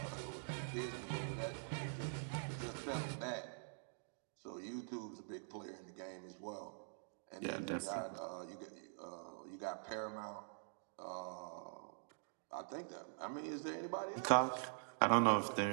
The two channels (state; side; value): silent; left; digital silence